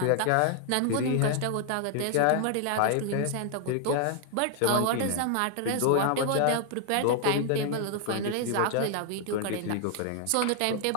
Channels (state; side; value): different; both; correlation 0.00